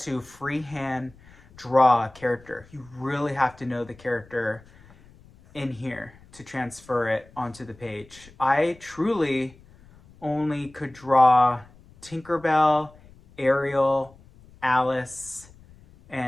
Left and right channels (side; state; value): left; noise; rumble, 25 dB below the sound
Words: freehand draw a character. You really have to know the character in here to transfer it onto the page. I truly only could draw Tinkerbell, Ariel, Alice,